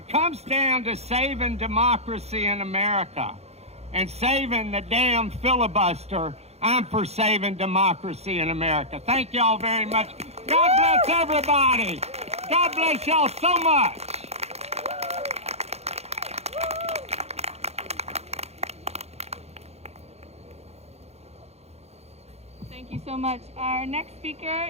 comes down to saving democracy in America and saving the damn filibuster, I'm for saving democracy in America. Thank y'all very much. God bless everybody. God bless y'all so much. Thank you so much. Our next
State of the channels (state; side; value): late; left; 0.31 ms